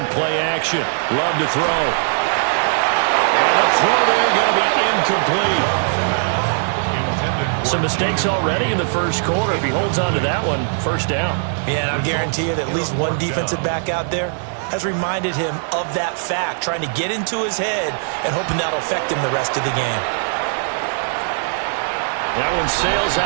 play action. Love to throw. And the throw there going to be incomplete. Some mistakes already in the first quarter. If he holds on to that one, first down. Yeah, and I guarantee you that at least one defensive back out there has reminded him of that fact, trying to get into his head and hoping that'll affect him the rest of the game. That one sails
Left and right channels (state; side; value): silent; left; 62 dB below the other